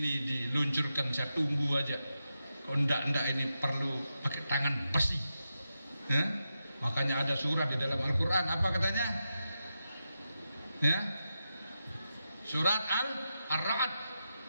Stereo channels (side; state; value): both; inverted; correlation -0.88